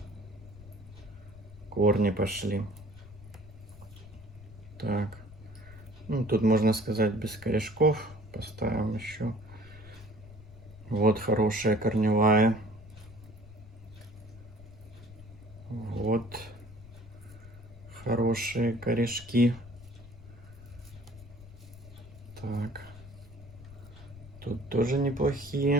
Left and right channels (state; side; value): noise; left; rumble, 18 dB below the sound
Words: корни пошли. Так, ну, тут можно сказать без корешков. Поставим еще. Вот хорошая корневая. Вот хорошие корешки. Так, тут тоже